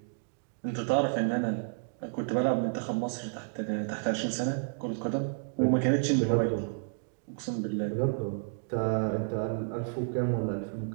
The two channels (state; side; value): silent; left; digital silence